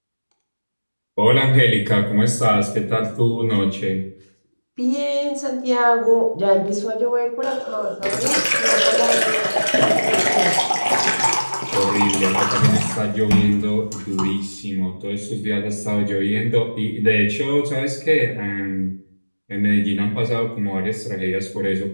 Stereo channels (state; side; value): inverted; both; correlation -1.00